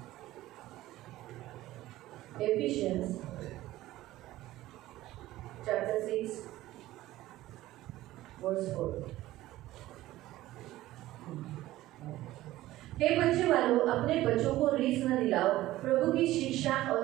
Ephesians chapter 6 verse 4. हे बच्चे वालों, अपने बच्चों को रीस न दिलाओ, प्रभु की शिक्षा और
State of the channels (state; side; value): quieter; left; 15.9 dB